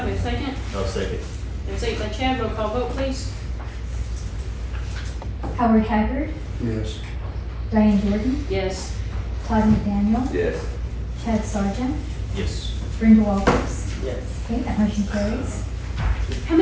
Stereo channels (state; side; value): identical; both; correlation 1.00